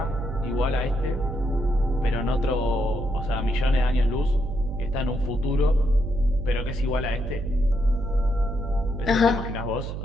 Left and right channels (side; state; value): right; noise; hum, 6 dB below the sound